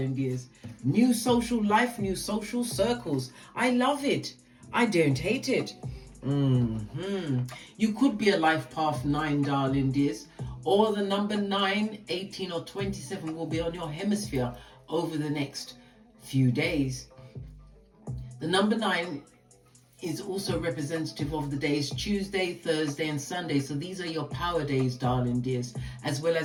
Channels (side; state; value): both; identical; correlation 1.00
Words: dears. New social life, new social circles. I love it. I don't hate it. You could be a life path 9, darling dears, or the number 9, 18 or 27 will be on your hemisphere over the next few days. The number 9 is also representative of the days Tuesday, Thursday and Sunday. So these are your power days, darling dears, as well